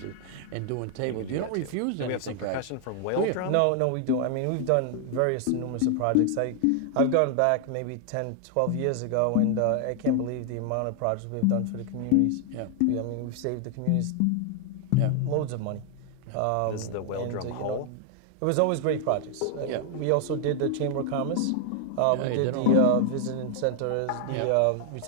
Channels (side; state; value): both; different; correlation 0.00